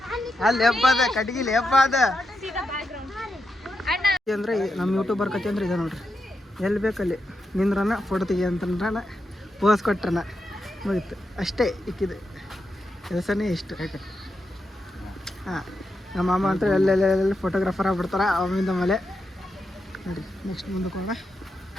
ಅಲ್ಲಿ ಹಬ್ಬ ಅದ ಕಟ್ಗಿ ಲೇಪ ಅದ ಅಂದರೆ ನಮ್ಮ ಯೂಟ್ಯೂಬರ್ ಕತೆ ಅಂದ್ರೆ ಇದೆ ನೋಡ್ರಿ. ಎಲ್ಲಿ ಬೇಕಲ್ಲಿ ನಿಂದ್ರನ ಫೋಟೋ ತೆಗಿ ಅಂತಂದ್ರನ ಪೋಸ್ ಕೊಟ್ರನ ಮುಗಿತು ಅಷ್ಟೇ. ಇಕ್ಕಿದೆ ಕೆಲಸನೇ ಇಷ್ಟು. ಹಾಂ, ನಮ್ಮ ಮಾಮ ಅಂತ ಎಲ್ಲೆಲ್ಲೆಲ್ಲ ಫೋಟೋಗ್ರಾಫರ್ ಆಗ್ಬಿಡ್ತಾರೆ ಅವಿಂದ ಮೇಲೆ. ನೋಡಿ ನೆಕ್ಸ್ಟ್ ಮುಂದಕ್ಕೆ ಹೋಗೋಣ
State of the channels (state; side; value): normal; both; correlation 0.86